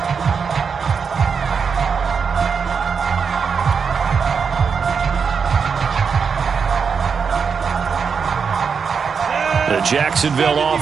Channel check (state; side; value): quieter; left; 5.9 dB